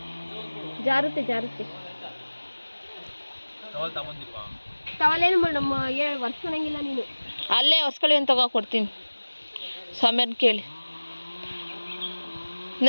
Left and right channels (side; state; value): both; inverted; correlation -1.00